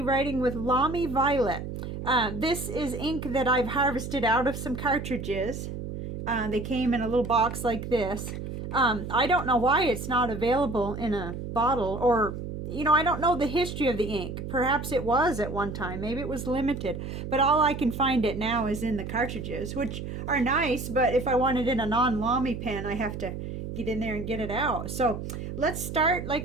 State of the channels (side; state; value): right; noise; hum, 7 dB below the sound